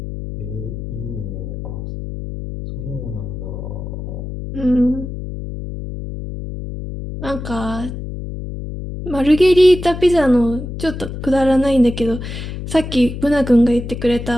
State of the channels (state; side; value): noise; left; hum, 8 dB below the sound